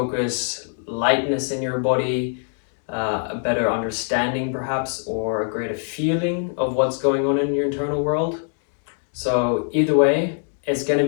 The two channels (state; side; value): silent; right; 63 dB below the other